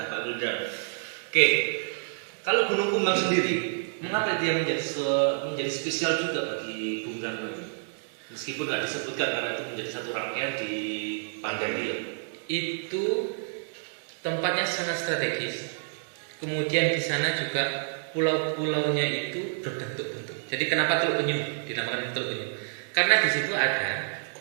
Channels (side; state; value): left; silent; digital silence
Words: Pak Gulda. Oke, kalau Gunung Kumbang sendiri, mengapa dia menjadi spesial juga bagi Bung Karno ini? Meskipun nggak disebutkan karena itu menjadi satu rangkaian di pandemi ya. Itu tempatnya sangat strategis. Kemudian di sana juga pulau-pulaunya itu berbentuk-bentuk. Jadi kenapa Teluk Penyu dinamakan Teluk Penyu? Karena di situ ada